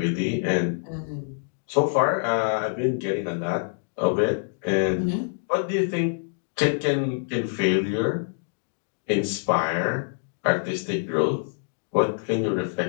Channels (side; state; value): right; silent; digital silence